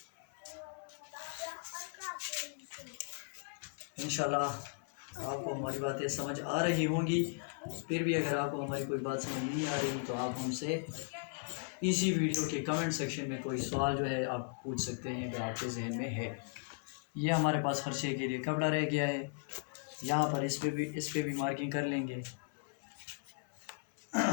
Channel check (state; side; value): silent; right; 53 dB below the other